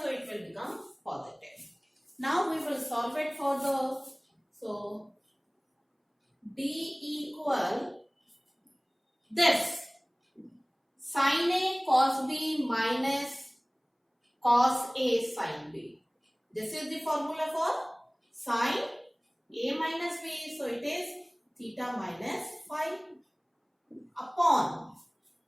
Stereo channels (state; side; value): identical; both; correlation 1.00